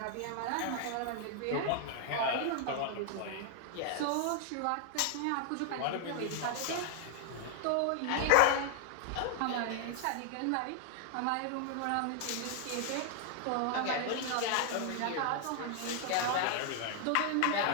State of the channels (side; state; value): both; different; correlation 0.00